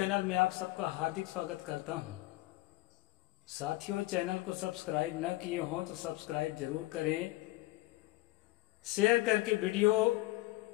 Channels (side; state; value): right; quieter; 19.1 dB